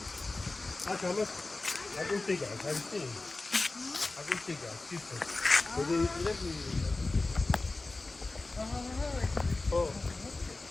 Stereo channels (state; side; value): quieter; right; 3.3 dB